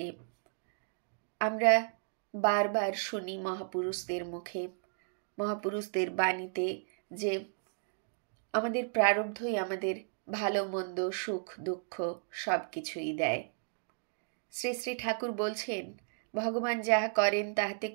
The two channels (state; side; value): silent; left; digital silence